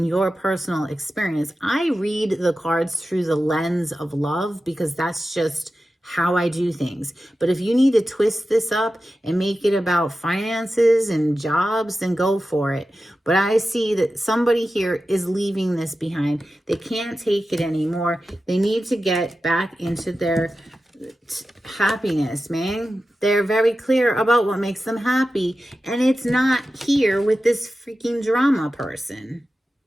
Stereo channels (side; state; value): both; normal; correlation 0.93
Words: your personal experience, I read the cards through the lens of love because that's just how I do things. But if you need to twist this up and make it about finances and jobs, then go for it. But I see that somebody here is leaving this behind. They can't take it anymore. They need to get back into their happiness, man. They're very clear about what makes them happy, and it's not here with this freaking drama person.